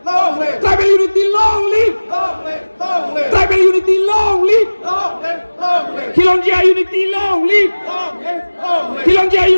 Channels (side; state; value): both; inverted; correlation -1.00